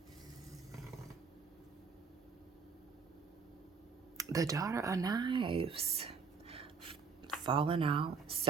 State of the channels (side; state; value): left; quieter; 5.5 dB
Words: The Daughter of Knives. Falling out,